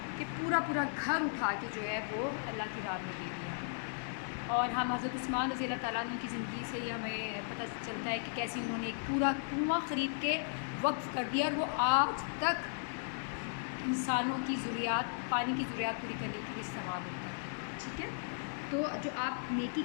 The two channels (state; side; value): silent; right; digital silence